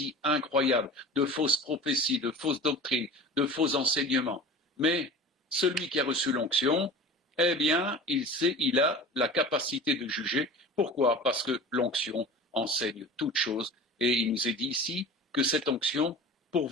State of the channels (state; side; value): normal; both; correlation 0.37